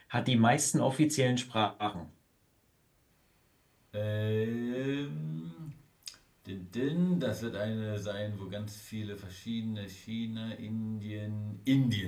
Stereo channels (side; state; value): both; identical; correlation 1.00